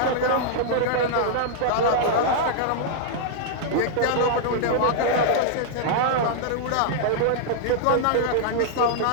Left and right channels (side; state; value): both; different; correlation -0.01